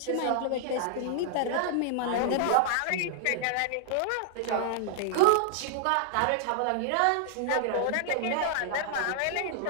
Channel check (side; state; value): both; different; correlation -0.01